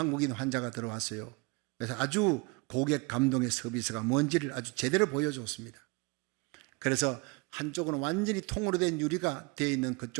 환자가 들어왔어요. 그래서 아주 고객 감동의 서비스가 뭔지를 아주 제대로 보여줬습니다. 그래서 한쪽은 완전히 통으로 된 유리가 되어 있는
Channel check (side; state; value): left; quieter; 27.8 dB